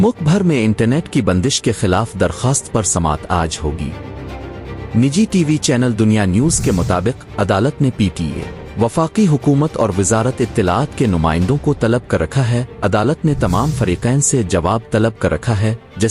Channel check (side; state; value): both; identical; correlation 1.00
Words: भर में इंटरनेट की बंदिश के खिलाफ दरखास्त पर समाअत आज होगी। निजी टीवी चैनल दुनिया न्यूज़ के मुताबिक अदालत ने पीटीए, वफाकी हुकूमत और वजारत इत्तलाआत के नुमाइंदों को तलब कर रखा है। अदालत ने तमाम फरीकैन से जवाब तलब कर रखा है।